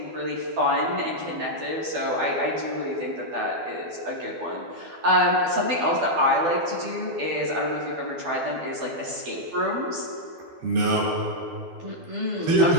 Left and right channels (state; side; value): late; left; 12 ms